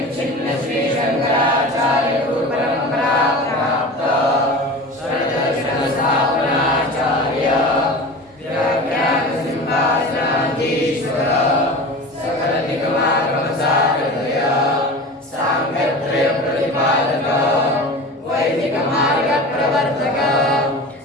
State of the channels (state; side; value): normal; both; correlation 0.33